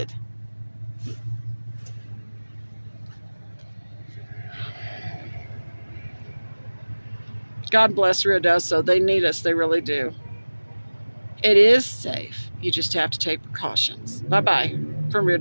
God bless Ruidoso. They need us. They really do. It is safe. You just have to take precautions. Bye-bye from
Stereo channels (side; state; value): both; inverted; correlation -1.00